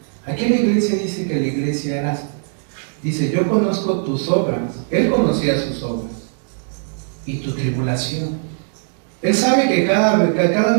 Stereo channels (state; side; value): silent; left; digital silence